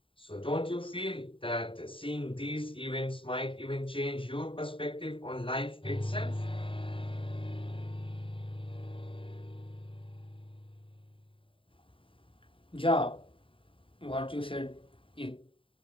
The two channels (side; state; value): right; late; 0.25 ms